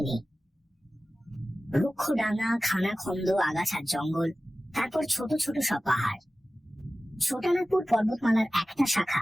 নেই। রুক্ষ ডাঙা, খানা খন্দ, আগাছার জঙ্গল, তারপর ছোট ছোট সব পাহাড়। ছোটানাগপুর পর্বতমালার একটা শাখা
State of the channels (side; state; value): both; normal; correlation 0.96